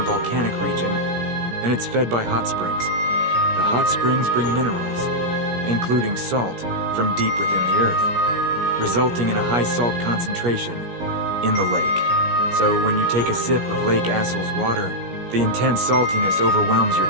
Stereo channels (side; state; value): left; late; 17 ms